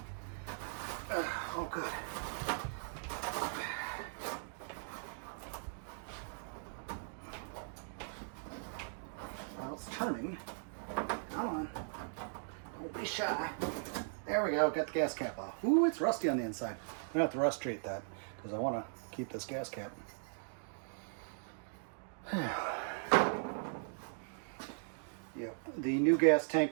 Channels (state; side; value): silent; left; digital silence